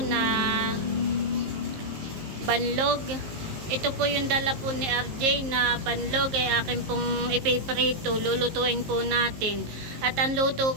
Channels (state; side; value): late; left; 19 ms